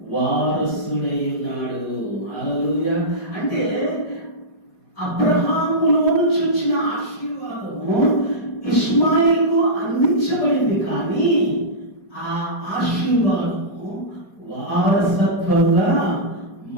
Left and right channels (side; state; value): right; late; 4.2 ms